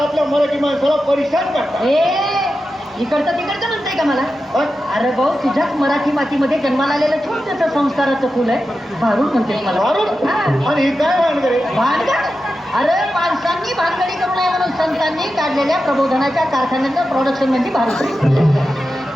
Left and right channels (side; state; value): both; normal; correlation 0.91